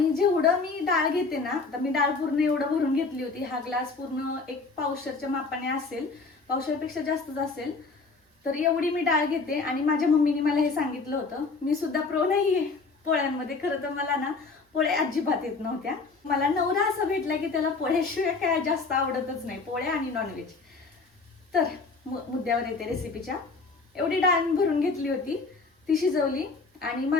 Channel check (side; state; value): right; quieter; 4.1 dB